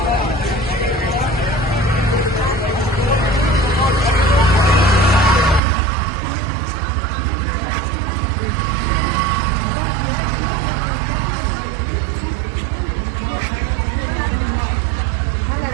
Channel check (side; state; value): left; drops out; at 5.6 s